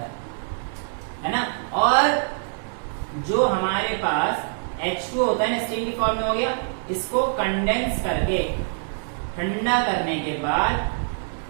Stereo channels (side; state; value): left; silent; 62 dB below the other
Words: है ना, और जो हमारे पास H2 होता है ना स्टीम की फॉर्म में हो गया, इसको कंडेंस करके ठंडा करने के बाद